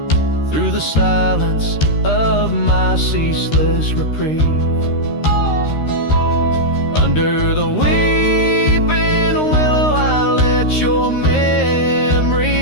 through the silence of my ceaseless reprieve. Under the weeping willow I let your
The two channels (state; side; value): late; right; 13 ms